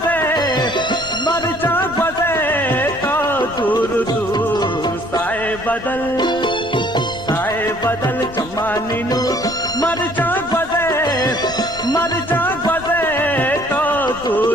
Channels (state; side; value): noise; left; rumble, 17 dB below the sound